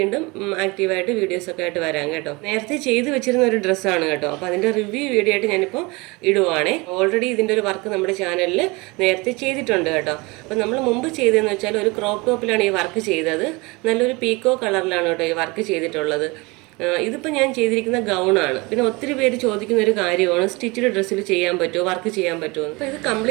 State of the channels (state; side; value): quieter; left; 25.3 dB